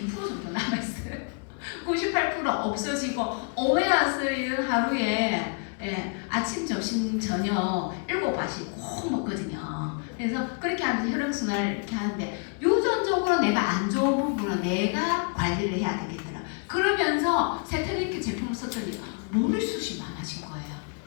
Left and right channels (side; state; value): right; quieter; 39.9 dB